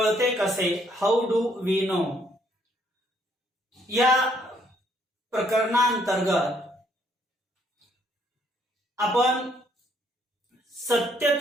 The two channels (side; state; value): both; normal; correlation 0.68